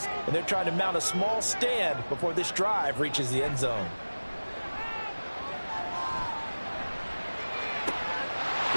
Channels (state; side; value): inverted; both; correlation -1.00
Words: and they're trying to mount a small stand before this drive reaches the end zone.